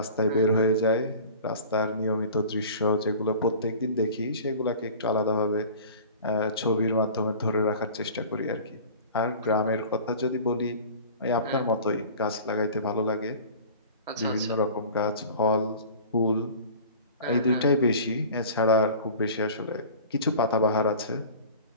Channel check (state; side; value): inverted; both; correlation -0.41